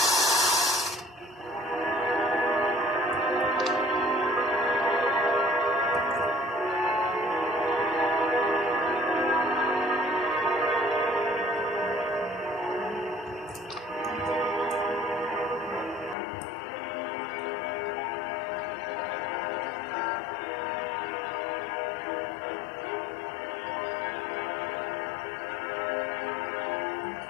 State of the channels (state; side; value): drops out; right; at 16.2 s